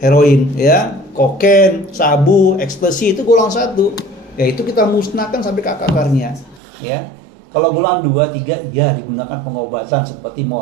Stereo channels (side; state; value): left; drops out; at 6.6 s